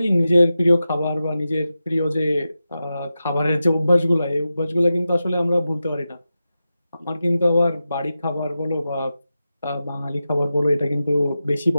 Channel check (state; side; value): inverted; both; correlation -0.91